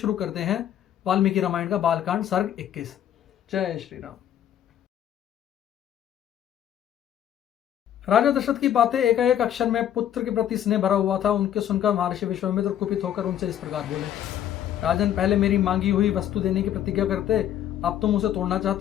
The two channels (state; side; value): quieter; right; 10.7 dB